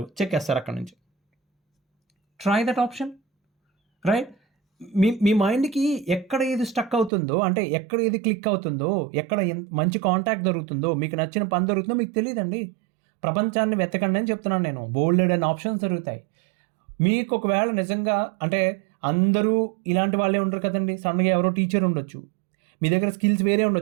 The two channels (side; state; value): left; drops out; at 7.1 s